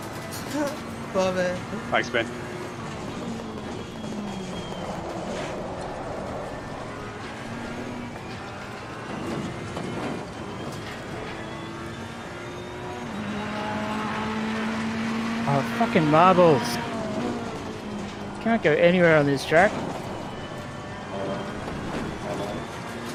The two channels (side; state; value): left; noise; hum, 27 dB below the sound